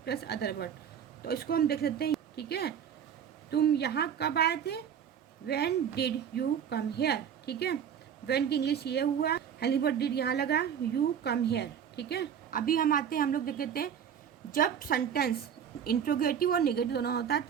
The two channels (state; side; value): quieter; left; 8.3 dB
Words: plus other word. तो इसको हम देख लेते हैं, ठीक है। तुम यहाँ कब आए थे, when did you come here, ठीक है। व्हेन की इंग्लिश ये हुआ, हेल्पिंग वर्ब डिड यहाँ लगा, यू कम हेयर, ठीक है। अभी हम आते हैं, हम लोग देख लेते हैं, जब सेंटेंस इंट्रोगेटिव और नेगेटिव दोनों होता है